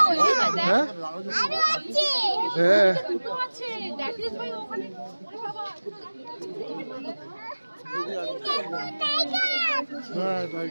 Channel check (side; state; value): both; inverted; correlation -1.00